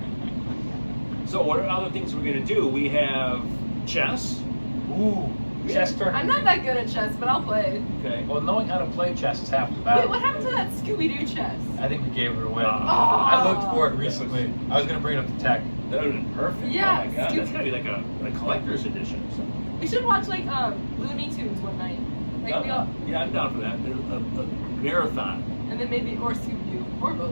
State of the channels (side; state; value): both; inverted; correlation -1.00